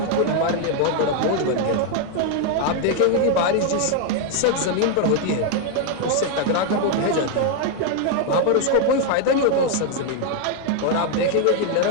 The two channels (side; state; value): both; different; correlation 0.00